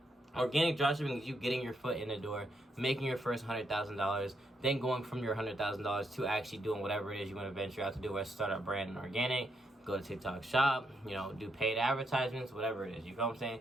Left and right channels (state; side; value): normal; both; correlation 0.78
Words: Organic dropshipping is you getting your foot in the door, making your first $100,000, then going from your $100,000 to actually doing whatever it is you want to venture out to do, whether start a brand in organic, go to TikTok shop, do paid advertisements, whatever it is. You feel what I'm saying?